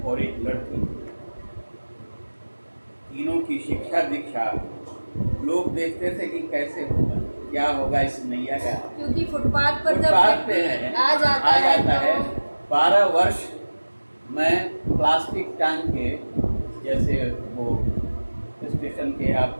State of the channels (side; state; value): both; inverted; correlation -1.00